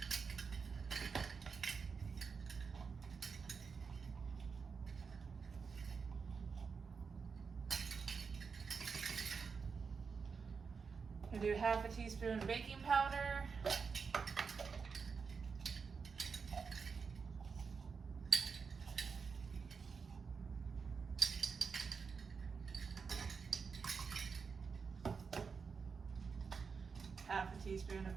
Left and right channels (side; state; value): left; quieter; 5.5 dB